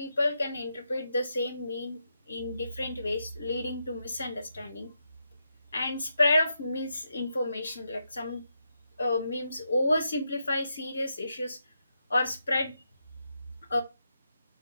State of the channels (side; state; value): both; inverted; correlation -0.83